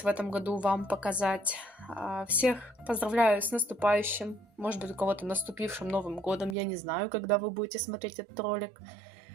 в этом году вам показать. Всех поздравляю с наступающим, может быть, у кого-то наступившим Новым годом. Я не знаю, когда вы будете смотреть этот ролик.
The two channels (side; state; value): left; drops out; at 6.6 s